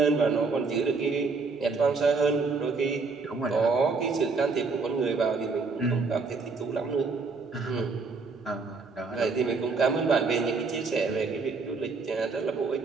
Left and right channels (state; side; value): quieter; left; 4.4 dB